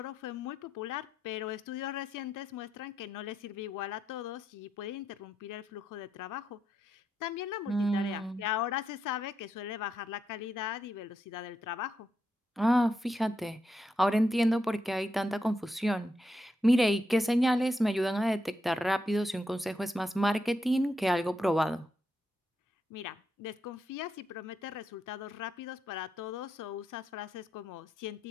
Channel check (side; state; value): both; normal; correlation 0.82